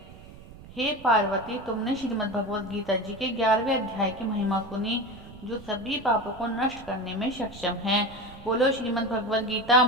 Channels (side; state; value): right; noise; rumble, 18 dB below the sound